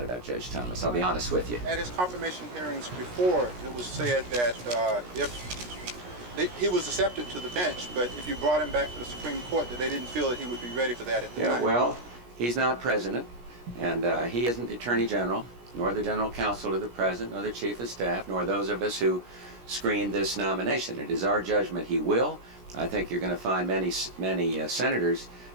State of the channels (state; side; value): late; left; 17 ms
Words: about Judge Thomas. I'll be honest with you. At his confirmation hearings before, it was said that he was accepted to the bench, but if you brought him back to the Supreme Court, that they didn't feel that he would be ready for that at the time. Yeah, well, he's not president, and he isn't the Attorney General, nor the General Counsel to the President, nor the Chief of Staff, nor those of us who screened this nomination. It is our judgment he will. I think you're going to find many senators